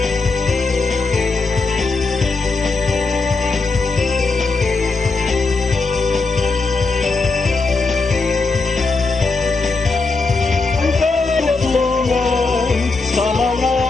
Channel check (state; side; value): quieter; right; 3.8 dB